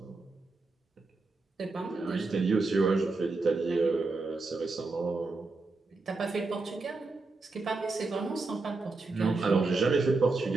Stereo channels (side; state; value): left; quieter; 3.6 dB